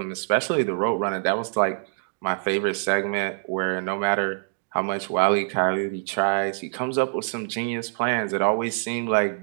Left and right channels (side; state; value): left; silent; 62 dB below the other